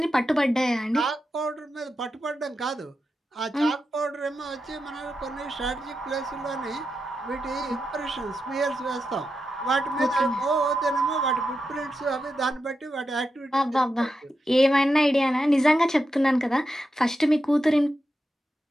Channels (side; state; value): both; normal; correlation 0.88